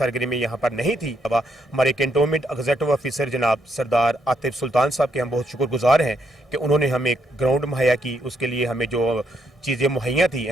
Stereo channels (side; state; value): both; normal; correlation 0.76